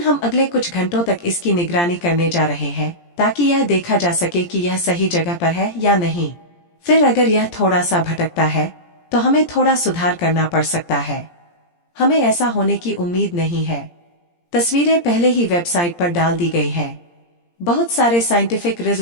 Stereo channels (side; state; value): right; late; 17 ms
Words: हम अगले कुछ घंटों तक इसकी निगरानी करने जा रहे हैं ताकि यह देखा जा सके कि यह सही जगह पर है या नहीं। फिर अगर यह थोड़ा सा भटकता है तो हमें थोड़ा सुधार करना पड़ सकता है। हमें ऐसा होने की उम्मीद नहीं है। तस्वीरें पहले ही वेबसाइट पर डाल दी गई हैं। बहुत सारे साइंटिफिक